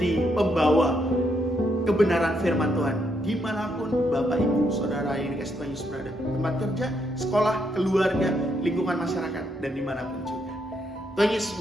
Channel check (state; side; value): normal; both; correlation 0.77